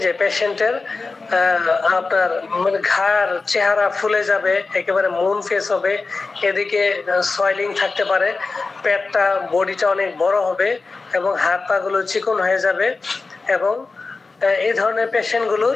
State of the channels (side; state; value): right; quieter; 4.0 dB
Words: যে পেশেন্টের আপনার মানে ঘাড় চেহারা ফুলে যাবে, একেবারে মুন ফেস হবে, এদিকে সয়েলিং থাকতে পারে, পেটটা বডিটা অনেক বড় হবে এবং হাত পা গুলো চিকন হয়ে যাবে। এবং এই ধরনের পেশেন্টগুলোর